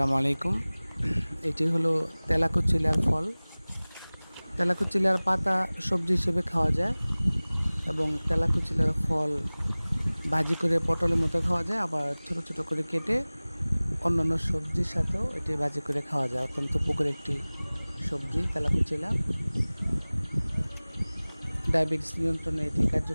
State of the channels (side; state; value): both; inverted; correlation -1.00